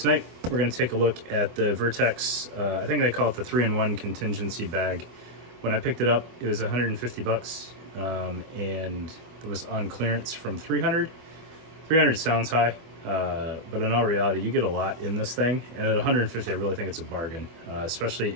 we're going to take a look at the Vertx, I think they call it the 3-in-1 contingency bag. When I picked it up, it was 150 bucks, and it was on clearance from 300. 300 sounds high, but in all reality, you get a lot in this thing. And at 150, I really think it's a bargain, especially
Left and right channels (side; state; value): left; late; 24 ms